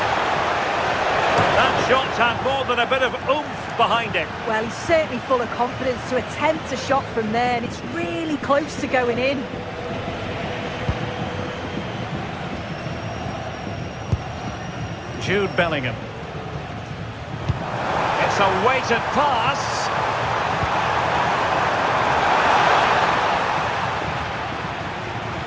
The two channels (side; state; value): both; identical; correlation 1.00